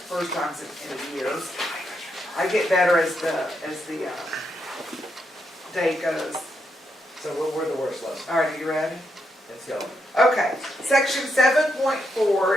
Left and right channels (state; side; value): normal; both; correlation 0.81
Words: times in years. I get better as the day goes. So what were the worst lessons? All right, are you ready? Let's go. Okay, section